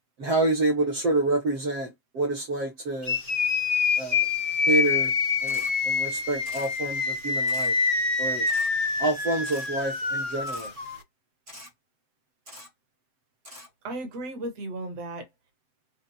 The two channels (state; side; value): late; left; 7.8 ms